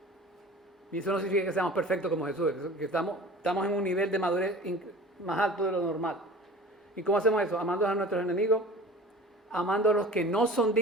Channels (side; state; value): both; normal; correlation 0.41